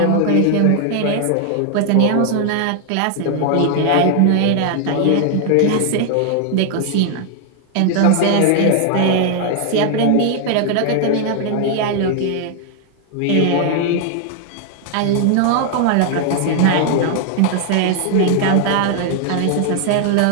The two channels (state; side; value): different; both; correlation 0.00